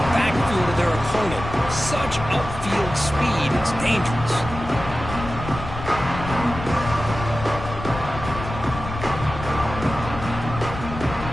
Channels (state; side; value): noise; left; rumble, 9 dB below the sound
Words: backfield of their opponent. Such upfield speed, it's dangerous.